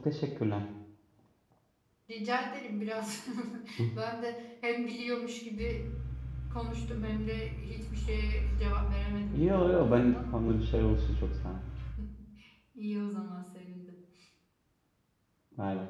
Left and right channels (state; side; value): identical; both; correlation 1.00